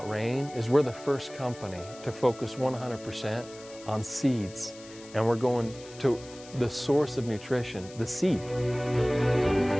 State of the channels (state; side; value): noise; left; hiss, 19 dB below the sound